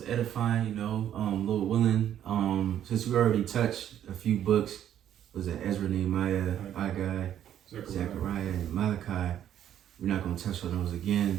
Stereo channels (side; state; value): left; quieter; 10.6 dB